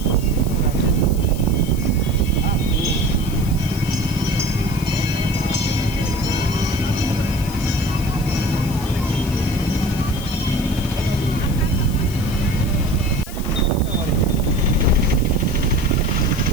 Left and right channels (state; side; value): noise; left; hiss, 15 dB below the sound